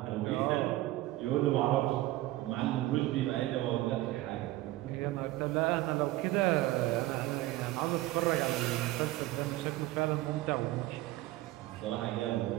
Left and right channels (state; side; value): quieter; left; 17.1 dB